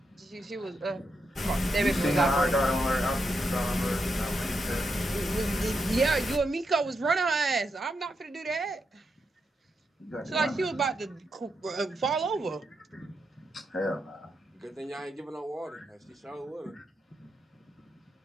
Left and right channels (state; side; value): normal; both; correlation 0.83